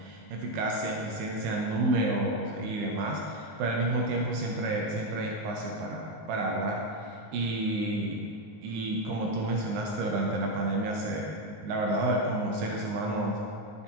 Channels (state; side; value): late; left; 19 ms